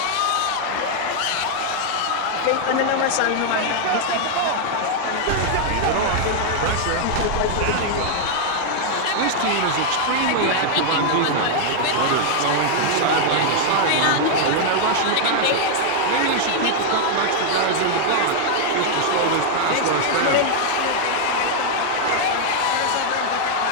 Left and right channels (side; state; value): both; different; correlation 0.00